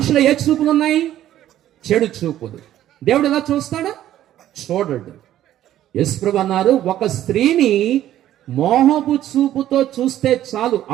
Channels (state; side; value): quieter; left; 12.5 dB